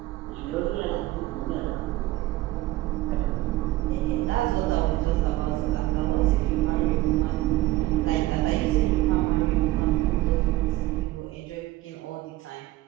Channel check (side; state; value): left; quieter; 17.7 dB